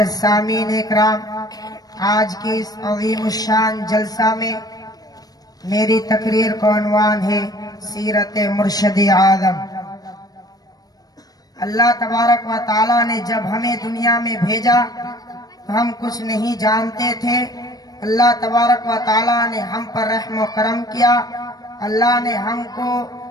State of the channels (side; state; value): right; late; 0.18 ms